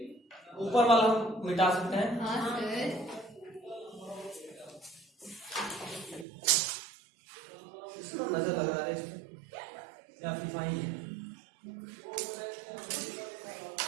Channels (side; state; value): left; drops out; at 6.2 s